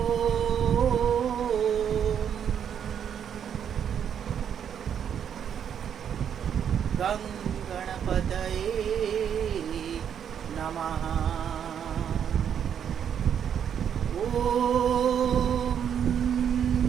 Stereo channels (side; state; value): left; quieter; 8.5 dB